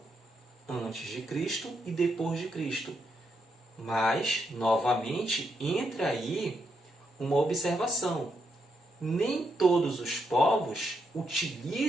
antes de Cristo e depois de Cristo. Mas, novamente, entra aí uma observação. Nem todos os povos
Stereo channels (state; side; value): normal; both; correlation 0.80